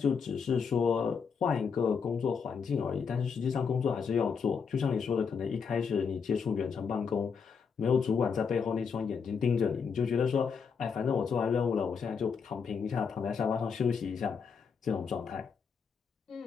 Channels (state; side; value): quieter; right; 6.1 dB